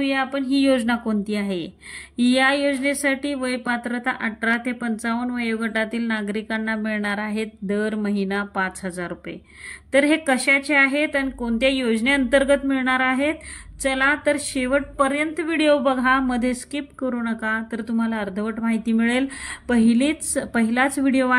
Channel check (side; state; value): both; identical; correlation 1.00